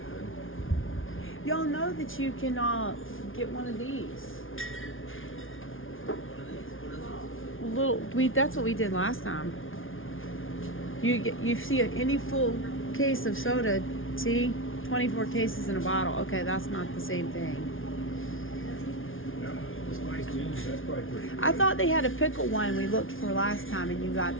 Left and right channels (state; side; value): late; right; 0.58 ms